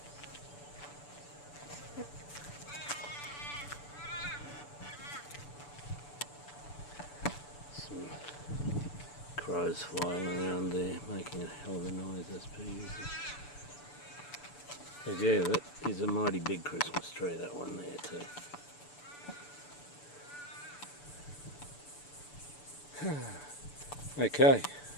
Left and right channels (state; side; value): late; right; 6.9 ms